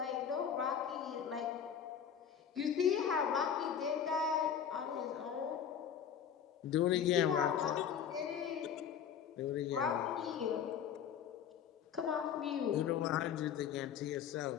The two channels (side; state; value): right; quieter; 8.2 dB